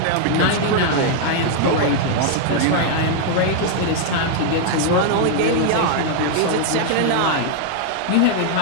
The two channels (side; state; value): both; different; correlation 0.00